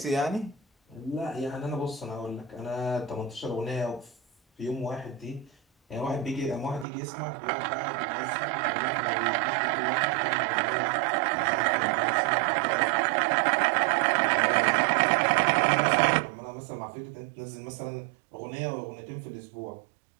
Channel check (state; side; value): drops out; left; at 6.9 s